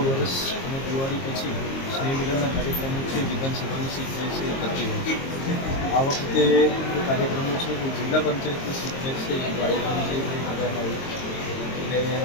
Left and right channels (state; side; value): late; right; 22 ms